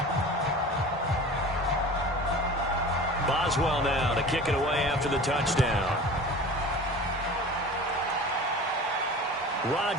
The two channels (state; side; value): normal; both; correlation 0.38